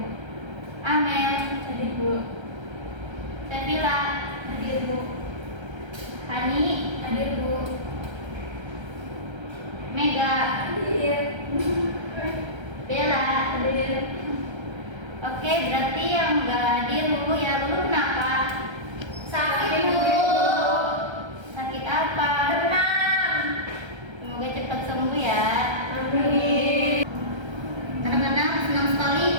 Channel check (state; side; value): late; left; 1.3 ms